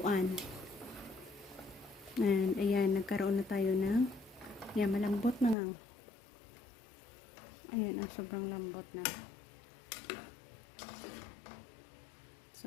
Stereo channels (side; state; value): right; drops out; at 5.6 s